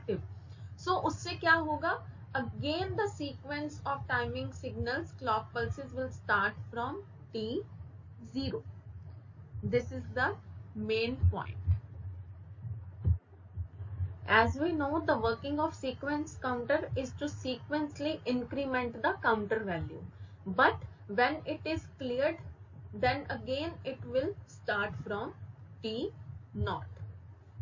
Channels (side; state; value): both; identical; correlation 1.00